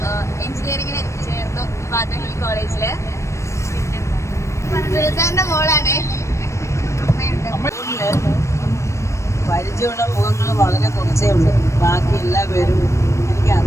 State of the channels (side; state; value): right; late; 0.14 ms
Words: എഞ്ചിനീയറിങ്ങിന് ചേർന്നു പാത്തഹിൽ കോളേജിൽ. പിന്നെ സുൽത്താൻ്റെ മോളാണ്. പരിചയമുള്ള മുഖങ്ങൾ വളരെ കുറച്ചേ ഉള്ളൂ. ബാക്കി എല്ലാവരും എനിക്ക്